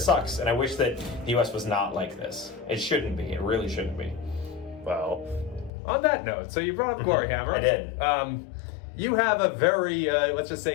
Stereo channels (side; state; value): right; drops out; at 5.7 s